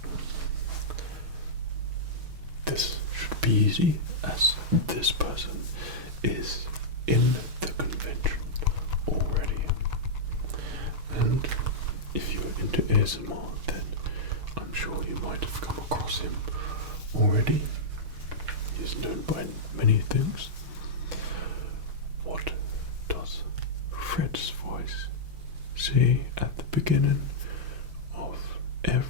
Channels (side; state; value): left; late; 6.1 ms